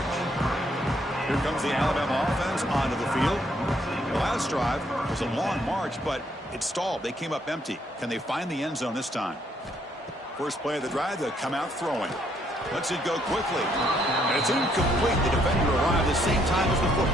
Here comes the Alabama offense onto the field. The last drive was a long march, but it stalled. They came up empty. Can they find the end zone this time? First play of the drive, they'll come out throwing. Lets it go quickly. And it's incomplete. The defender arrived at the same time as the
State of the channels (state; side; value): normal; both; correlation 0.70